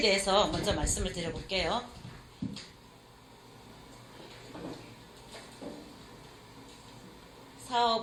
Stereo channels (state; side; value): identical; both; correlation 1.00